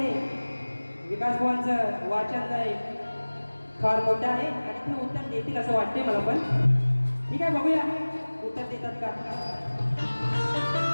विकास बुवांचं वाचन फार मोठं आहे आणि ते उत्तर देतील असं वाटते मला पण. ठीक आहे, बघूया उत्तर देतात का.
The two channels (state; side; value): inverted; both; correlation -1.00